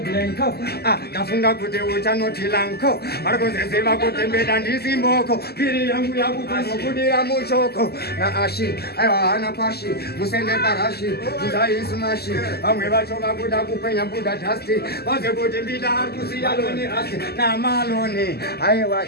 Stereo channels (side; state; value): right; late; 0.46 ms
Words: ndafunga kuti uchanoti lanko varikuziziva kuti mbeda ndisimboko piri yangu yakupazokudira muchoko naashi aiwa hana pashi musende parashi nzaisumashi vamwe vacho vakuda kupenya buda dhasti vaze kuti mbida ari kusiya loni rasi namaloni aiwa